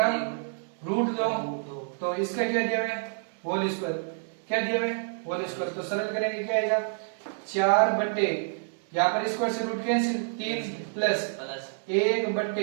तो इसका क्या दिया है होल स्क्वायर, क्या दिया है होल स्क्वायर, तो सरल करेंगे क्या आएगा 4 बट्टे यहाँ पर स्क्वायर से रूट कैंसिल 3 प्लस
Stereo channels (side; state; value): left; silent; 59 dB below the other